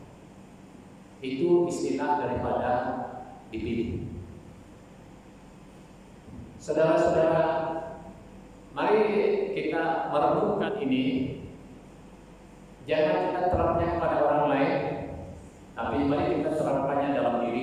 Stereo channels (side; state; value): both; identical; correlation 1.00